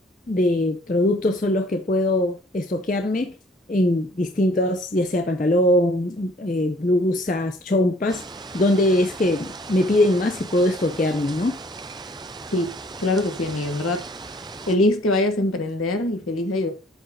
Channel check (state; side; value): normal; both; correlation 0.58